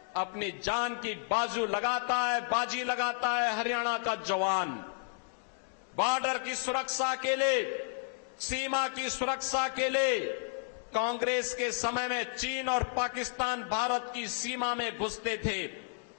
अपनी जान की बाजी लगाता है हरियाणा का जवान। बॉर्डर की सुरक्षा के लिए, सीमा की सुरक्षा के लिए कांग्रेस के समय में चीन और पाकिस्तान भारत की सीमा में घुसते थे।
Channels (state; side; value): silent; right; digital silence